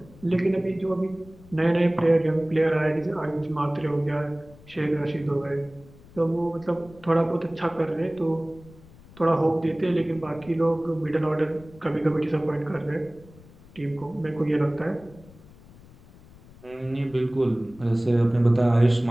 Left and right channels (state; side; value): noise; left; rumble, 23 dB below the sound